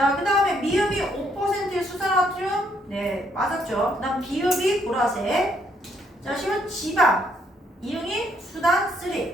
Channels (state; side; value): normal; both; correlation 0.71